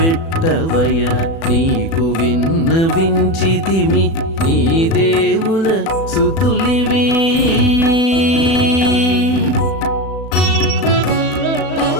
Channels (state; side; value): late; right; 36 ms